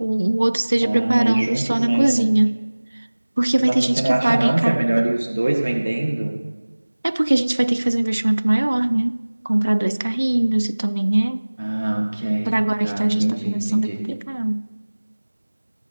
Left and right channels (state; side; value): inverted; both; correlation -1.00